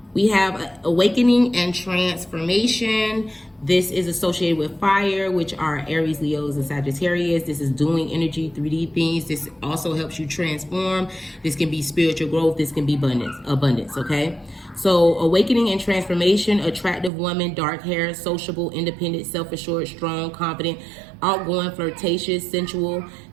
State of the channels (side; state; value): left; drops out; at 17.1 s